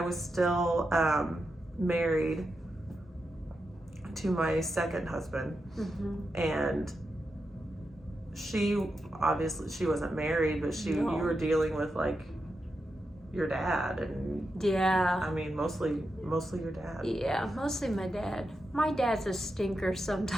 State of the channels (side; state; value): both; normal; correlation 0.87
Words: was still married to my second husband. Mm-hmm. And she wasn't married, but you were dealing with like your dad, and I mean mostly your dad. Yeah, mostly my dad. My dad's a stinker